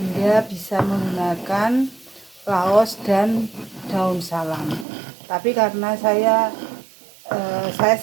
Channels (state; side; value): drops out; left; at 4.9 s